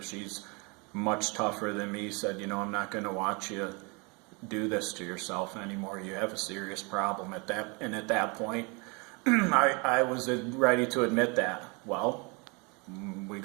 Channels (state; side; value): quieter; left; 30.4 dB